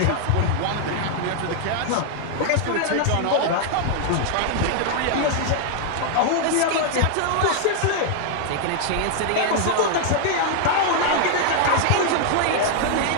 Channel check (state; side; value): different; both; correlation 0.00